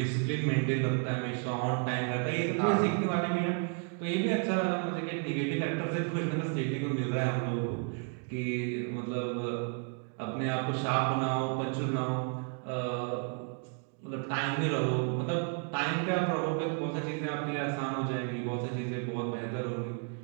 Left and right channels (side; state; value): left; quieter; 39.3 dB